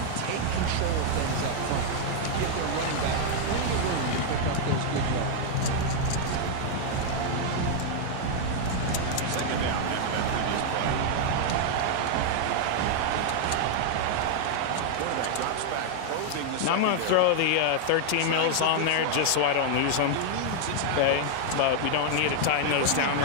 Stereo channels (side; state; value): both; different; correlation -0.01